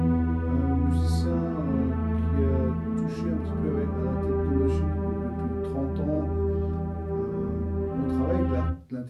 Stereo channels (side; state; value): both; identical; correlation 1.00